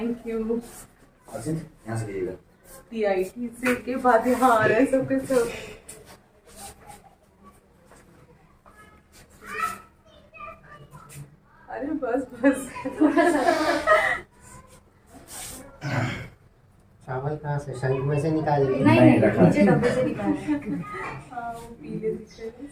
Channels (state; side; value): identical; both; correlation 1.00